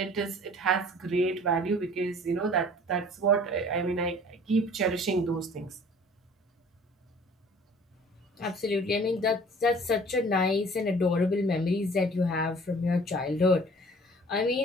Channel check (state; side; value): normal; both; correlation 0.50